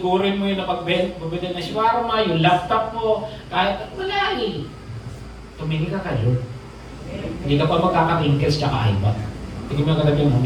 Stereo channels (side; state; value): both; identical; correlation 1.00